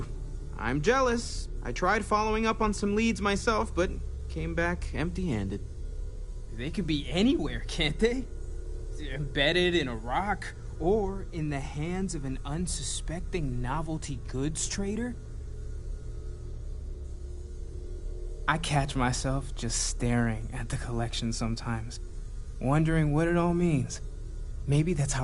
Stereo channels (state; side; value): identical; both; correlation 1.00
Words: I'm jealous. I tried following up on some leads myself, but came back empty-handed. They could be anywhere, can't they? Embedded in a rock, or in the hands of an unsuspecting novelty goods trader? I catch myself just staring at the collection sometimes, wondering what it all means. Maybe that's